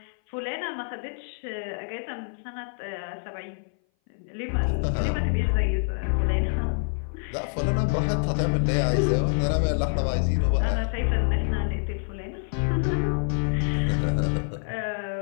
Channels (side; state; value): right; silent; 58 dB below the other